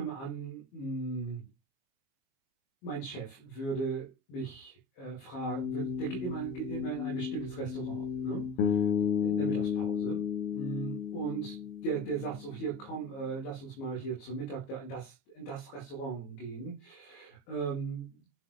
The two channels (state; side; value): late; right; 22 ms